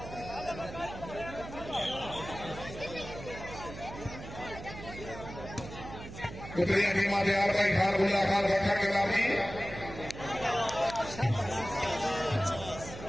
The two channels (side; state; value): right; noise; hum, 12 dB below the sound